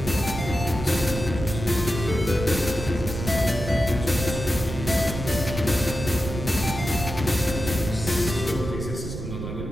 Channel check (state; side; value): noise; right; rumble, 7 dB below the sound